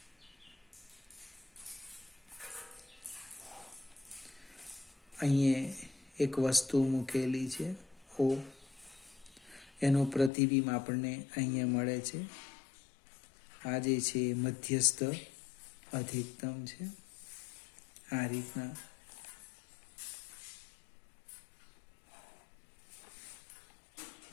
અહીંયા એક વસ્તુ મૂકેલી છે O, એનું પ્રતિબિંબ આપણને અહીંયા મળે છે. આ જે છે મધ્યસ્થ અધિકતમ છે. આ રીતના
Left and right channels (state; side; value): drops out; right; at 10.3 s